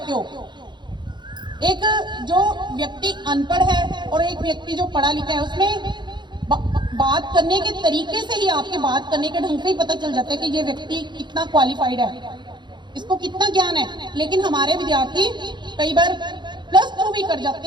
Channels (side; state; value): left; late; 0.22 ms